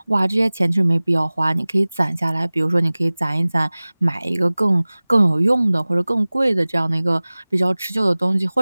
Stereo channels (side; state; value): both; inverted; correlation -0.99